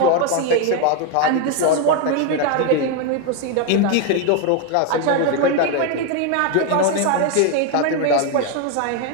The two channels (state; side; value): different; both; correlation 0.01